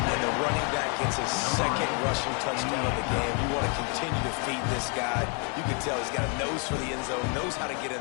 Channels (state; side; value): quieter; right; 35.8 dB